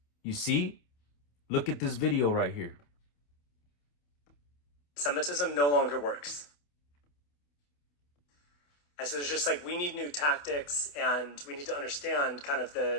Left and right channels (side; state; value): right; late; 28 ms